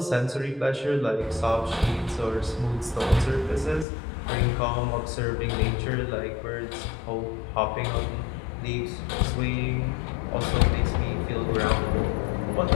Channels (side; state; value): right; drops out; at 3.9 s